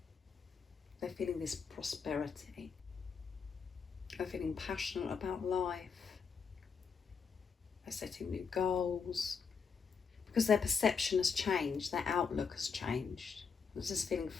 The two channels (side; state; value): right; quieter; 5.8 dB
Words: They're feeling this prosperity. They're feeling passionate about life. They're setting new goals because their perception has changed, their outlook has changed. They're just feeling